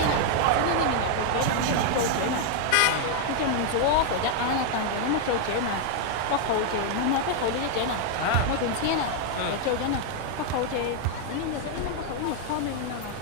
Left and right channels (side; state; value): both; different; correlation 0.00